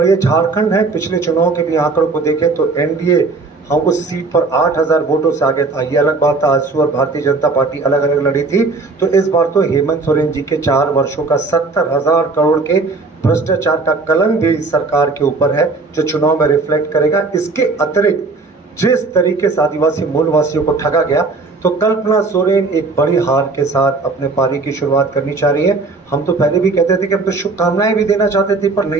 ये झारखंड है। पिछले चुनाव के भी आंकड़ों को देखें तो एनडीए हम उस सीट पर 8,000 वोटों से आगे था। ये अलग बात था, आजसू और भारतीय जनता पार्टी अलग अलग लड़ी थी। तो इस बार तो हेमंत सोरेन जी के 4 वर्षों का 70,000 करोड़ के भ्रष्टाचार का कलंक भी इस सरकार के ऊपर है, जो चुनाव में रिफ्लेक्ट करेगा। इसके अतिरिक्त जिस तरीके से आदिवासी मूलवासियों को ठगा गया, तो कल्पना सोरेन एक बड़ी हार के साथ अपने पारी की शुरुआत करनी चाह रही है। हम तो पहले भी कहते थे कि हम तो शुभकामनाएं भी देना चाहते थे, पर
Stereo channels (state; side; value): quieter; left; 3.8 dB